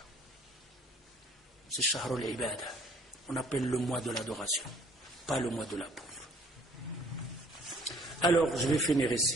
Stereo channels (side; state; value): both; normal; correlation 0.57